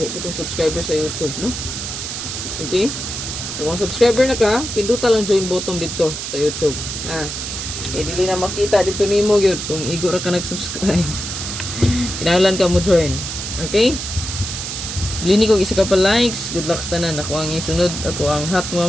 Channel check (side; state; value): right; noise; hiss, 6 dB below the sound